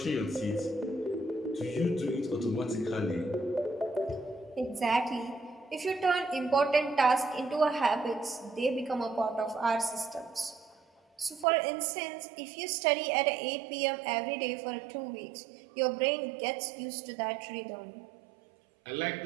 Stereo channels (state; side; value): drops out; left; at 11.5 s